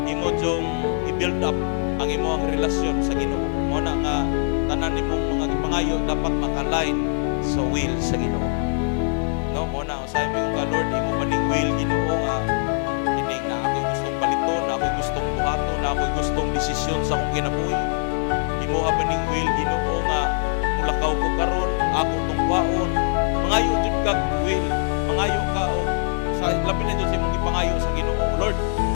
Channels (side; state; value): right; silent; digital silence